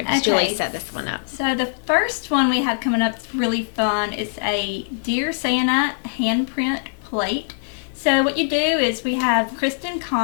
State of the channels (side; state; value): right; silent; digital silence